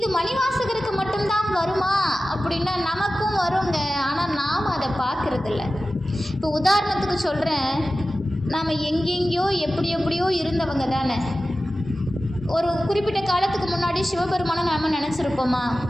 மணிவாசகருக்கு மட்டும்தான் வருமா அப்படின்னா நமக்கும் வருங்க. ஆனால் நாம் அதை பார்க்குறதில்ல. இப்போ உதாரணத்துக்கு சொல்கிறேன், நாம் எங்கெங்கேயோ எப்படியோ இருந்தவங்க தானே. ஒரு குறிப்பிட்ட காலத்துக்கு முன்னாடி சிவபெருமானை நாம் நினச்சிருப்போமா?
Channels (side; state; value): both; normal; correlation 0.95